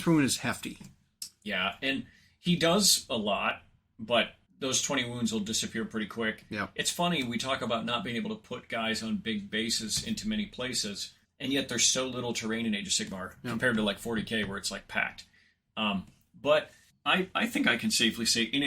per wound is hefty. Yeah, and he does a lot, but those 20 wounds will disappear pretty quick. Yeah. It's funny, we talk about not being able to put guys on big bases into many places, and yet there's so little terrain in Age of Sigmar compared to like 40k where it's like packed. But I think I can safely say in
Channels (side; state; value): both; identical; correlation 1.00